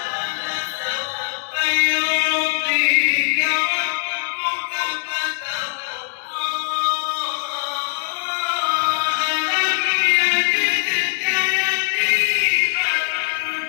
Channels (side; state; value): right; silent; 61 dB below the other